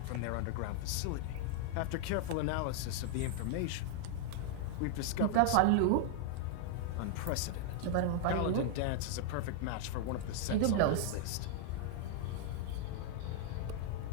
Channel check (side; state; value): both; different; correlation 0.00